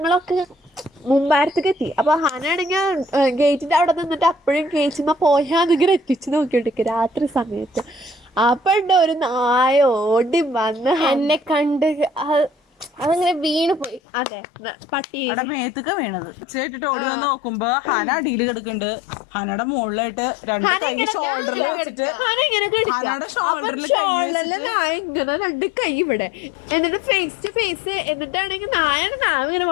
മുമ്പാരത്തേക്ക് എത്തി. അപ്പൊ ഹാനാണെങ്കിൽ ഗേറ്റിന്റെ അവിടെ നിന്നിട്ട് അപ്പോഴും കേച്ചുമ്മ പോയാന്നിങ്ങനെ എത്തിച്ച് നോക്കിയോണ്ടിരിക്കും രാത്രി സമയത്ത്. അപ്പൊ ഉണ്ട് ഒരു നായ ഓടി വന്ന് എന്നെ കണ്ട് അതങ്ങനെ വീണ് പോയി. അതെ പട്ടി മേത്തൊക്കെ വീണത് ചേട്ടിട്ട് ഓടി വന്ന് നോക്കുമ്പോ ഹന അടിയിൽ കിടക്കുന്നുണ്ട്. ഹനയുടെ മുകളിലായിട്ട് രണ്ട് കൈ ഷോൾഡറിൽ വെച്ചിട്ട് നായ ഇങ്ങനെ രണ്ട് കൈ ഇവിടെ എന്നിട്ട് ഫേസ് ടു ഫേസ് എന്നിട്ടാണെങ്കിൽ നായ ഇങ്ങനെ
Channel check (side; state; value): right; drops out; at 14.0 s